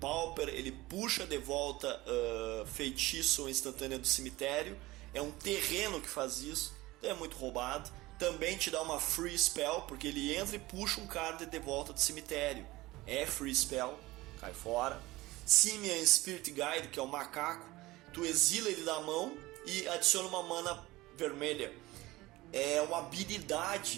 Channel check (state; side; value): quieter; left; 19.2 dB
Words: Ele puxa de volta feitiço instantâneo do cemitério. É um terreno que faz isso, então é muito roubado. Também te dá uma free spell, porque ele entra e puxa um card de volta do cemitério. É free spell, cai fora. Simian Spirit Guide, que é o macaco, tu exila ele da mão e adiciona uma mana vermelha. É uma